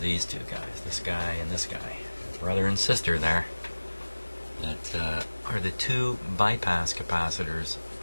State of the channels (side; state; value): both; inverted; correlation -1.00